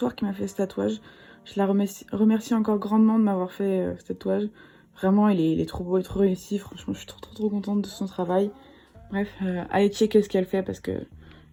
qui m'a fait ce tatouage. Je la remercie encore grandement de m'avoir fait ce tatouage. Vraiment il est trop beau et trop réussi, franchement je suis trop contente de son travail. Bref, allez checker ce qu'elle fait parce que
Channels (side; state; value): both; identical; correlation 1.00